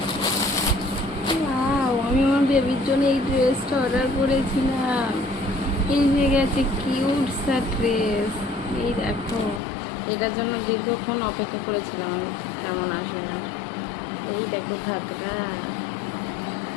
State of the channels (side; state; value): right; drops out; at 9.6 s